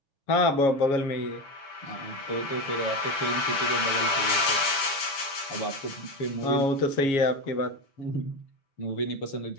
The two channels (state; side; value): late; right; 7.2 ms